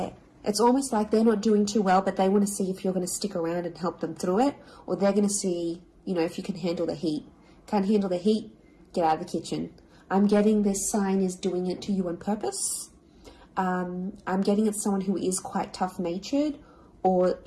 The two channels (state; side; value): identical; both; correlation 1.00